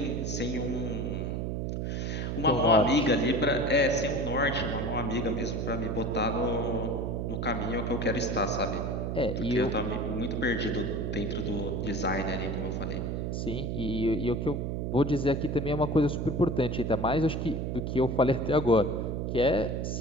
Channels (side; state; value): right; noise; hum, 2 dB below the sound